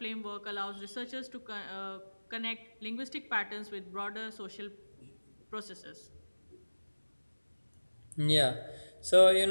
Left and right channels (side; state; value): both; inverted; correlation -1.00